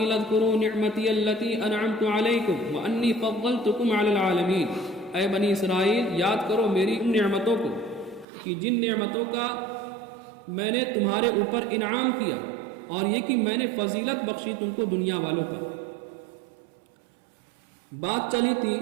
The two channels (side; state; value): left; drops out; at 8.2 s